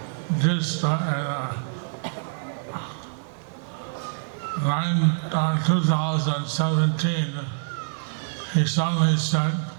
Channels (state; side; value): silent; left; digital silence